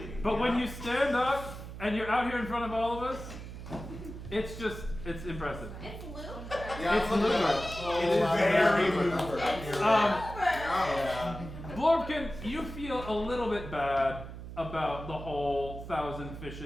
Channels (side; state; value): right; noise; hum, 11 dB below the sound